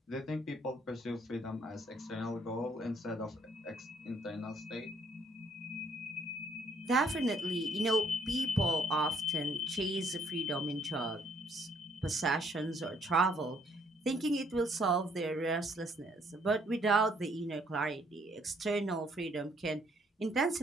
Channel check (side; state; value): both; normal; correlation 0.66